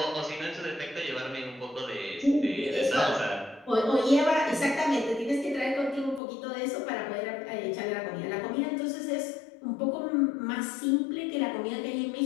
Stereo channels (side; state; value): right; drops out; at 6.2 s